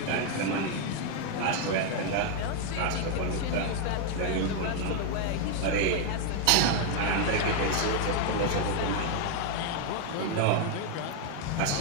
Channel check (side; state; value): both; different; correlation 0.01